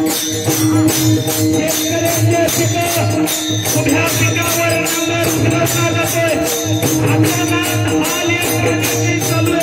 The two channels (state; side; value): identical; both; correlation 1.00